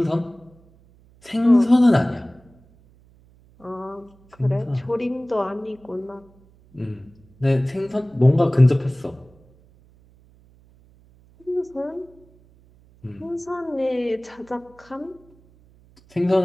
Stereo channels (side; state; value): right; noise; hum, 29 dB below the sound